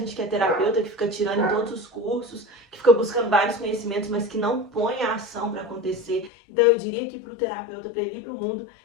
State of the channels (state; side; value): drops out; right; at 6.3 s